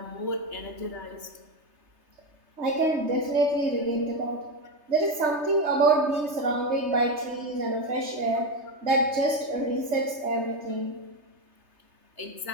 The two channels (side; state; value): left; late; 3.3 ms